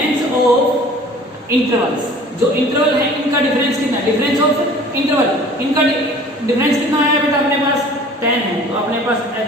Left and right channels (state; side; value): normal; both; correlation 0.47